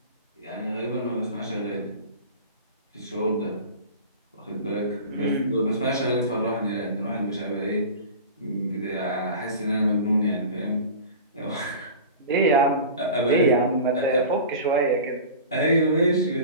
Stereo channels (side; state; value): both; inverted; correlation -0.35